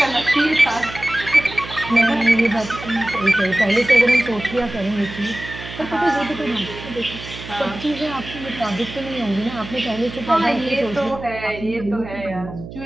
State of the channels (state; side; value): noise; right; hum, 13 dB below the sound